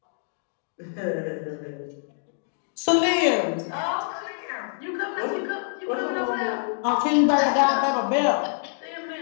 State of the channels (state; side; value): silent; right; digital silence